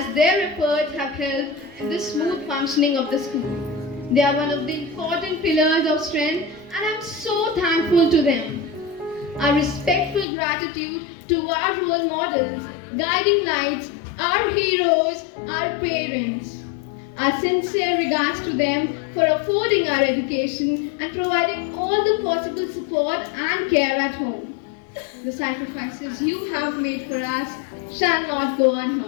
their efforts have helped in the smooth functioning of the school. They are one of the important pillars of strength and I am so thankful to them. Our respectful gratitude to our role models, guiding lights, our heroes, our parents. Our sincere regards to them for affording our education and providing all the possible support and care at home. The sacrifices you have made for us shall not go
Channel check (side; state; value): right; drops out; at 10.2 s